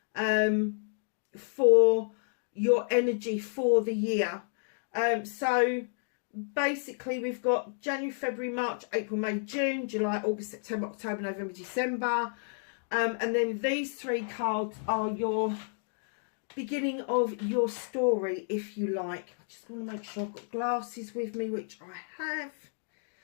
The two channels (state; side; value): silent; right; digital silence